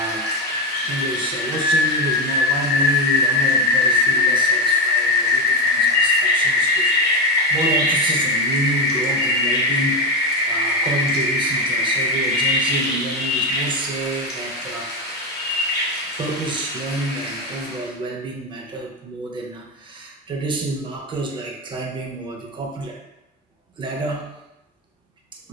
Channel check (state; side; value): normal; both; correlation 0.13